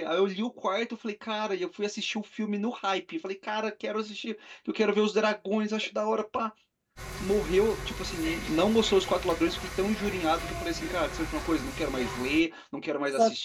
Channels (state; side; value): identical; both; correlation 1.00